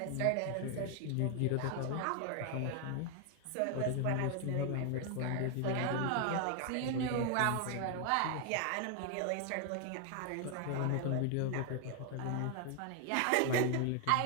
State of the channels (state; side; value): different; both; correlation 0.00